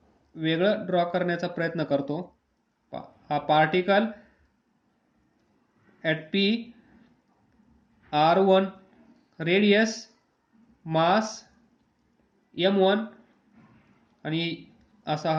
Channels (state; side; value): identical; both; correlation 1.00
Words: वेगळं ड्रॉ करण्याचा प्रयत्न करतो. हा particle at P r1 radius mass m1 आणि असा